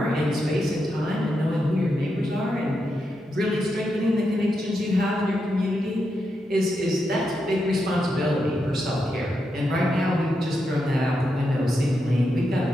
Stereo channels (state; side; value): normal; both; correlation 0.85